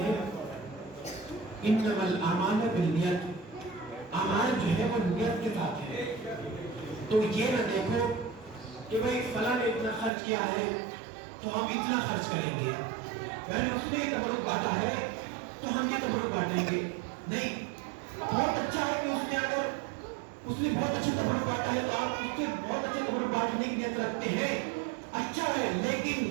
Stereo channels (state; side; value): drops out; left; at 10.1 s